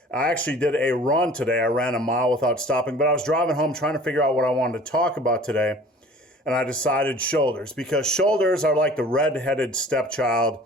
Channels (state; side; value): normal; both; correlation 0.46